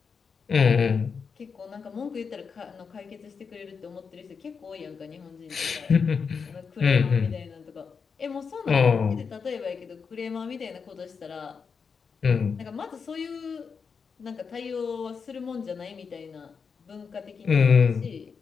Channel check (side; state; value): right; quieter; 5.7 dB